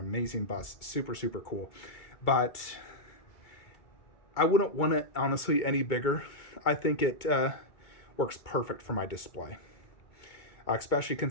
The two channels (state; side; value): late; right; 2.2 ms